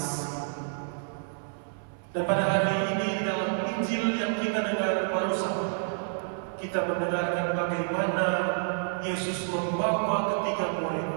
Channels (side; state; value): left; silent; 59 dB below the other